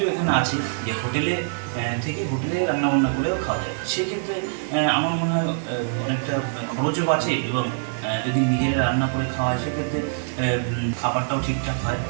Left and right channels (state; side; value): silent; left; digital silence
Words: এখানে আছে যে হোটেলে থেকে হোটেলে রান্নাবান্না করেও খাওয়া যায়। সেক্ষেত্রে আমার মনে হয় অনেকটা খরচও বাঁচে, এবং যদি নিজেরা রান্না করে খাওয়া হয় সেক্ষেত্রে খাবারটাও ঠিকঠাক হয়।